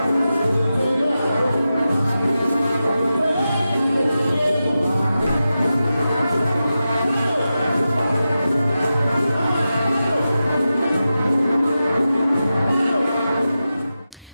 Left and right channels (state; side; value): inverted; both; correlation -0.92